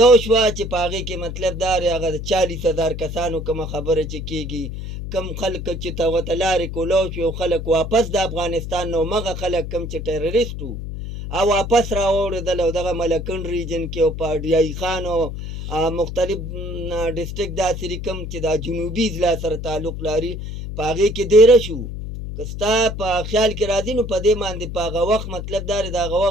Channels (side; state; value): left; noise; hum, 7 dB below the sound